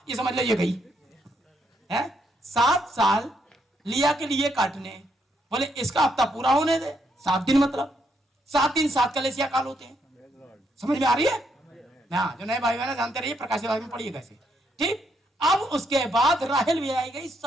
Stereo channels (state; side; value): normal; both; correlation 0.76